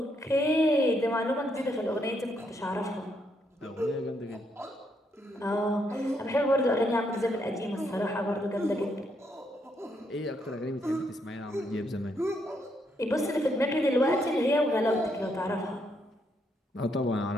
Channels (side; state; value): both; normal; correlation 0.75